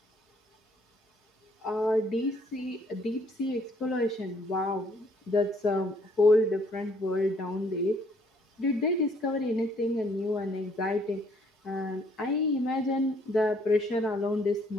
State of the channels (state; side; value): normal; both; correlation 0.64